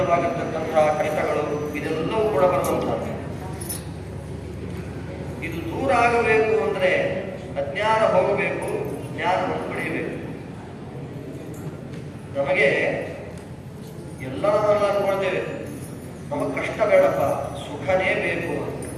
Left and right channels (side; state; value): both; identical; correlation 1.00